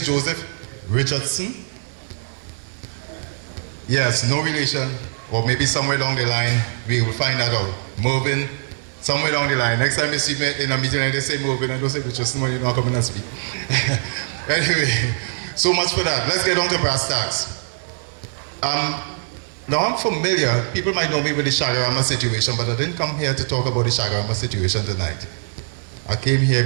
Joseph Richardson. Yes, no relation, or maybe somewhere along the line, we will find that out. Mervyn, somewhere along the line. Next time you see me in a meeting and they say Mervyn, I don't say Richardson, you're not coming and speak. Anyway, so much for that. Let's get on to brass tacks. Now I'm familiar, people might know me with the Shagarama situation, but I didn't come here to talk about the Shagarama situation tonight. I came here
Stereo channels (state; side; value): silent; left; 64 dB below the other